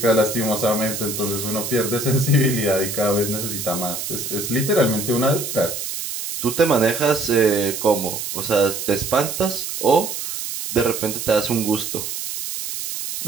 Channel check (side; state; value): right; noise; hiss, 5 dB below the sound